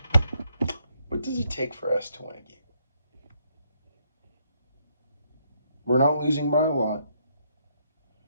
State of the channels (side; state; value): both; inverted; correlation -0.73